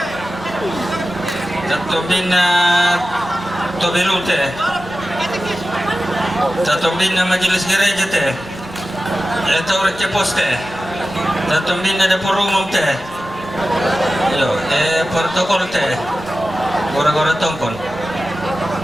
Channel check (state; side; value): normal; both; correlation 0.94